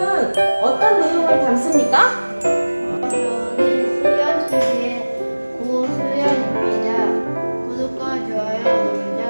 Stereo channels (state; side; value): inverted; both; correlation -1.00